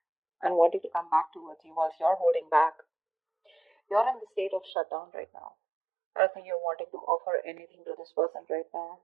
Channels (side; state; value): left; drops out; at 4.7 s